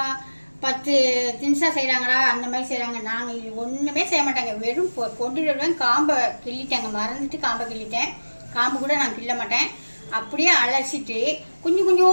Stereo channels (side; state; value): both; inverted; correlation -1.00